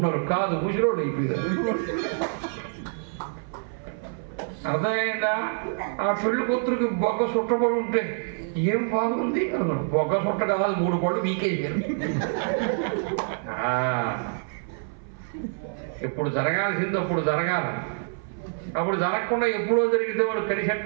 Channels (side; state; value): left; silent; 58 dB below the other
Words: కాదు, ముసిరోళ్ళు అయిపోయారు. అర్థమైందా? ఆ పెళ్లి కూతురికి బొగ్గ చుట్టబడి ఉంటే ఏం బాగుంది అన్నాడు. బొగ్గ చుట్ట కాదు, 3 పళ్ళు వీకేసారు. ఎప్పుడు జరగాల్సింది అప్పుడు జరగాలి. అప్పుడు జరగకుండా ఎప్పుడో జరిగితే వాళ్ళు